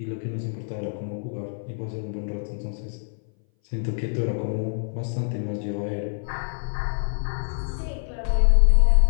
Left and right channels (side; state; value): right; silent; 59 dB below the other